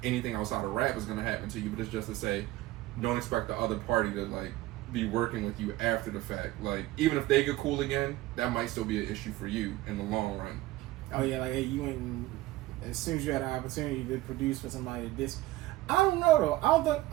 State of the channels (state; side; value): quieter; left; 17.4 dB